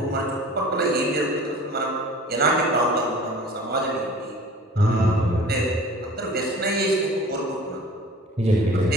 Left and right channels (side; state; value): both; normal; correlation 0.44